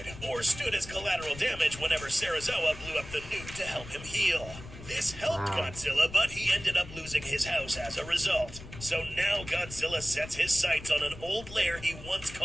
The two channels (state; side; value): noise; left; rumble, 14 dB below the sound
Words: or stood as collateral damage whenever Serizawa blew up the nuke to help him heal. This helped Godzilla, but he ended up losing his house as a result. So now Godzilla sets his sights on an old lair he once